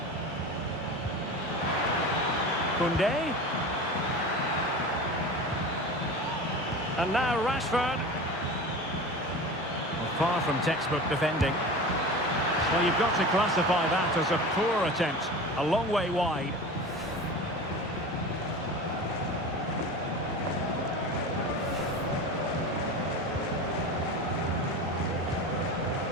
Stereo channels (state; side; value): normal; both; correlation 0.32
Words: Koundé. And now Rashford. Well, far from textbook defending. Well, you've got to classify that as a poor attempt. A long way wide.